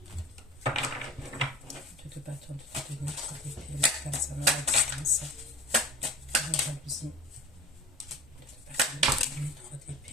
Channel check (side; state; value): both; normal; correlation 0.39